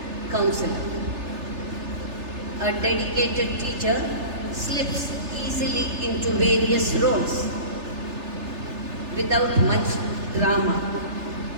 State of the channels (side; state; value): left; late; 3.3 ms